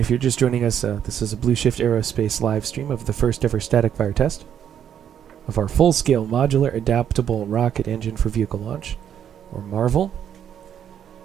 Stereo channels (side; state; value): left; quieter; 9.2 dB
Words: if you're just joining us, this is a bluShift Aerospace live stream of the first ever static fire test of our full-scale Modular Adaptable Rocket Engine for Vehicle Launch, or MAREVL.